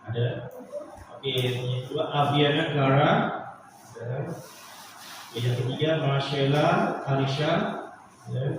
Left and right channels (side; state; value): both; identical; correlation 1.00